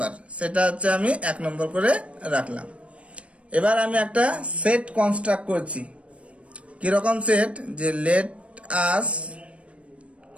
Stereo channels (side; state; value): left; late; 0.062 ms